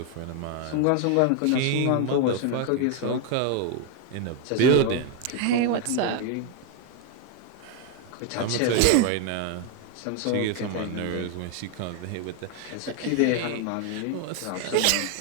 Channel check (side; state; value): both; different; correlation 0.01